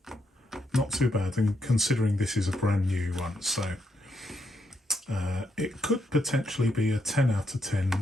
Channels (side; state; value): both; normal; correlation 0.79